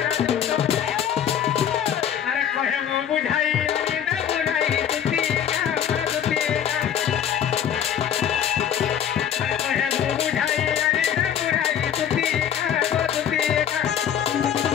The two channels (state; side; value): quieter; right; 9.3 dB